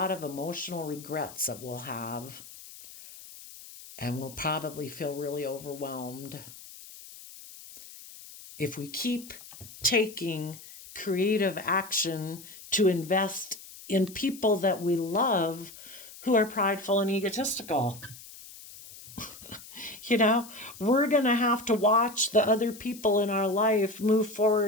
of emotional regrets that we'll have, and we'll probably feel really overwhelmed. If we keep taking creative action to invest in people that we love who are prideful and egotistical, we're going to have to watch the other people in our life move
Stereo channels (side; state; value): left; noise; hiss, 17 dB below the sound